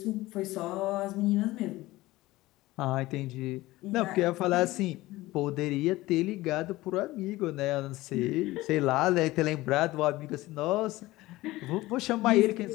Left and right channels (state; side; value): quieter; right; 18.4 dB